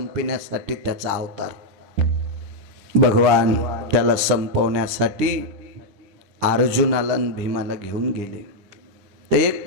त्याचा अवतार भगवान त्याला संपवण्यासाठी अर्जुनाला आणि भीमाला घेऊन गेले. ते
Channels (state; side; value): late; left; 10 ms